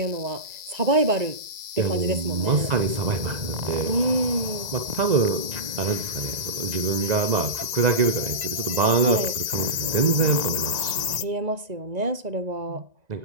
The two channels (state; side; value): late; left; 1.9 ms